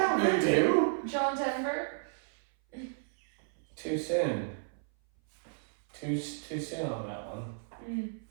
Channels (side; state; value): left; silent; 56 dB below the other